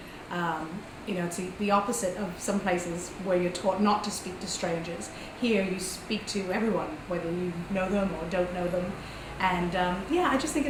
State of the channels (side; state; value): both; identical; correlation 1.00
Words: It's the opposite of some places where you're taught not to speak to strangers. Here you speak to everyone, whether you know them or don't know them. And I just think